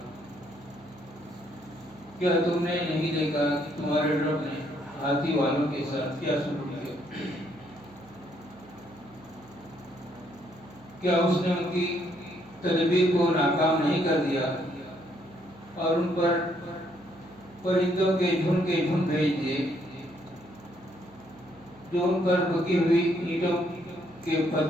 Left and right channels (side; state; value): right; noise; hum, 25 dB below the sound